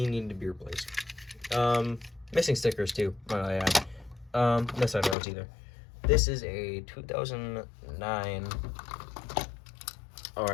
needed to be replaced. Missing stickers too, might I add. No side roads either. This is a 2009, or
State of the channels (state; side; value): drops out; right; at 5.2 s